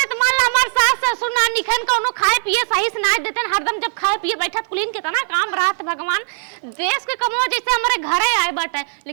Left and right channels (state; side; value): silent; left; 66 dB below the other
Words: तो मान ला हमार सास ससुर ना निखन कोनो खाए पिए सही से ना देते हरदम, जब खाए पिए बैठत कुलीन के तना काम रात भगवान देश के कमो जैसे हमारे घरे आए बाटे,